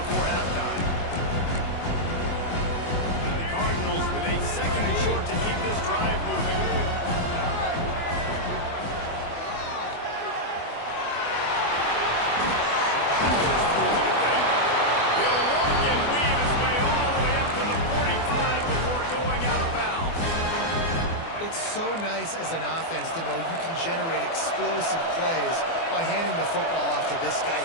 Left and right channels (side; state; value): right; late; 24 ms